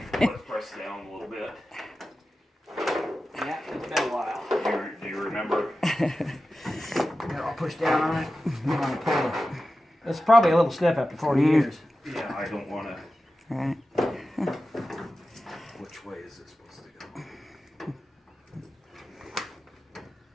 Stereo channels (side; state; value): both; normal; correlation 0.93